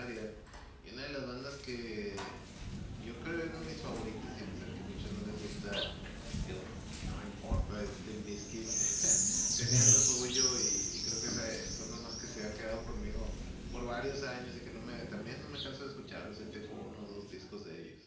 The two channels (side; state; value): both; identical; correlation 1.00